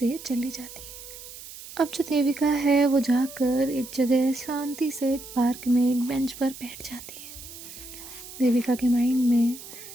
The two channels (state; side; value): noise; right; hiss, 14 dB below the sound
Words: चली जाती है। अब जो देविका है वो जाकर एक जगह शांति से एक पार्क में एक बेंच पर बैठ जाती है। देविका के माइंड में